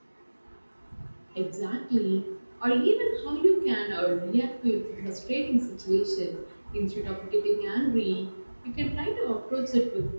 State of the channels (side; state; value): both; inverted; correlation -1.00